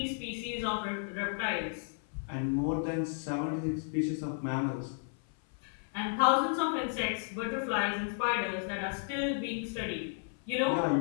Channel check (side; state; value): right; silent; 56 dB below the other